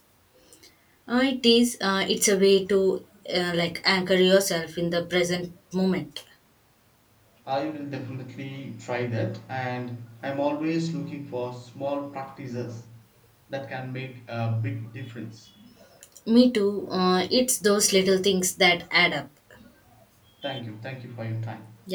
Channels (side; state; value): both; identical; correlation 1.00